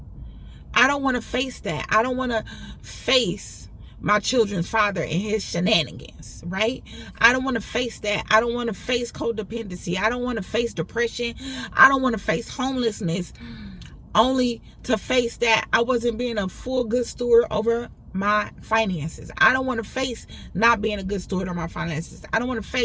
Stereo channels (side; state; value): both; identical; correlation 1.00